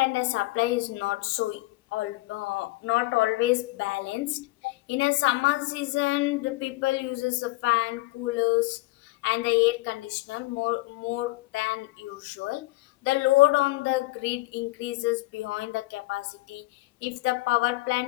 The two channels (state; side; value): quieter; right; 20.8 dB